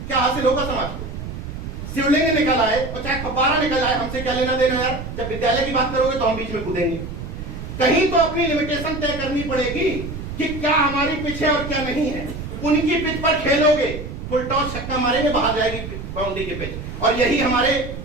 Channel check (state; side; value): noise; right; rumble, 8 dB below the sound